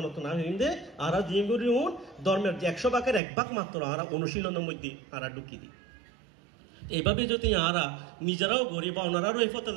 নতো না হিন্দে আর জিমগুরি ধর্মের 100 ভাগের 1 ভাগ মাত্র আর অনুশীলনের মধ্যে আর ঢুকি দিই এইভাবে যদি আরা নিজেরাও গড়ি বা ওনারাও এই পথে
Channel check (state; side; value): drops out; left; at 3.2 s